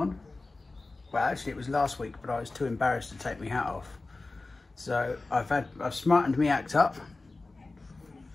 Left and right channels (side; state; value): right; quieter; 3.4 dB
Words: Well, actually it was last week, but I was too embarrassed to take my hat off. So I've smartened me act up.